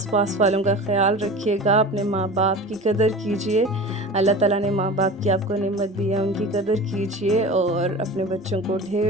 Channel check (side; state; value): both; normal; correlation 0.35